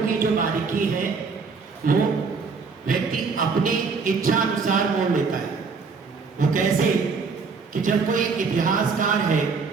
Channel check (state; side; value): quieter; left; 4.9 dB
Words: जो बारीकी है वो व्यक्ति अपनी इच्छा अनुसार मोड़ लेता है। वो कैसे कि जब कोई इतिहासकार है,